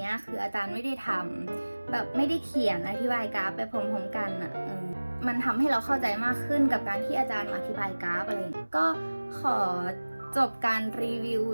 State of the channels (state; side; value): inverted; both; correlation -1.00